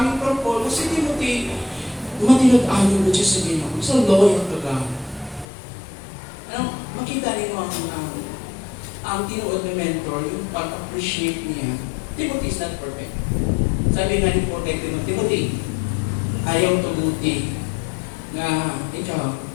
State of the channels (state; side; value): drops out; right; at 5.5 s